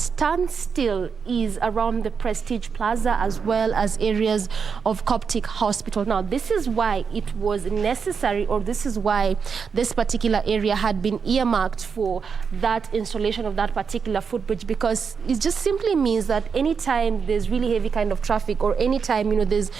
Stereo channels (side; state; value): left; quieter; 6.0 dB